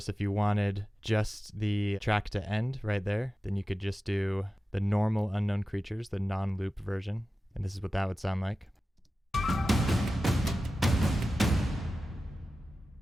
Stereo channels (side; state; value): both; normal; correlation 0.94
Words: if you wanted just the track to end right there, then you could just do the normal Unknown Creatures, the non-loop version. And this is what that would sound like.